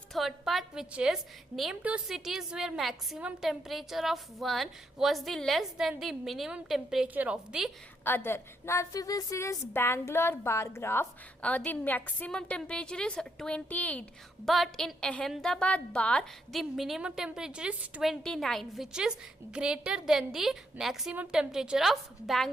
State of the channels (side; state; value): both; normal; correlation 0.77